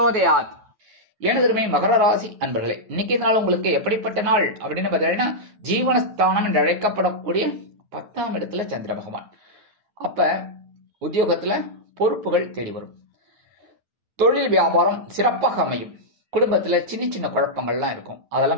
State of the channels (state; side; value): late; left; 9.4 ms